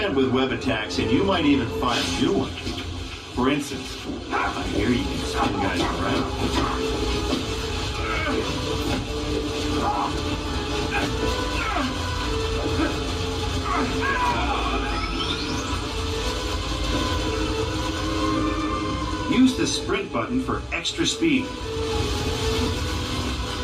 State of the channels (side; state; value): both; identical; correlation 1.00